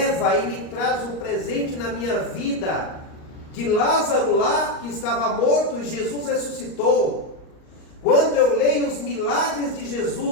e me traz um presente na minha vida, de Lázaro lá que estava morto e Jesus ressuscitou. Quando eu leio os milagres de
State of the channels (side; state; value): right; late; 38 ms